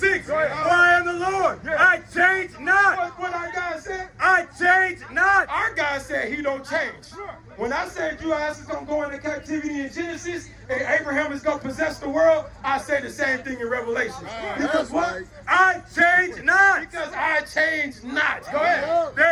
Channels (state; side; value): identical; both; correlation 1.00